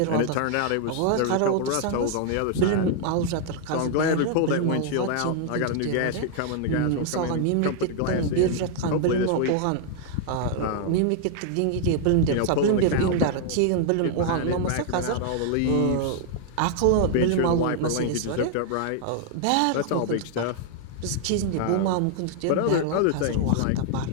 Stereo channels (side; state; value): both; different; correlation 0.00